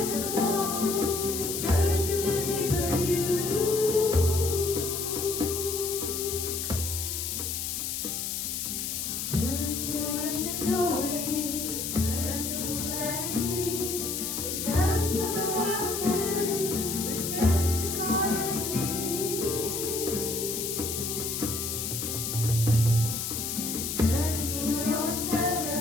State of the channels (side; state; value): left; noise; hiss, 3 dB below the sound